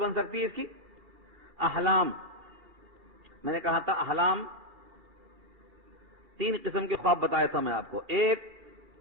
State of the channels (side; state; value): left; late; 2.4 ms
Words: سکتی ہے اس کی؟ احلام. میں نے کہا تھا احلام 3 قسم کے خواب بتایا تھا میں آپ کو. ایک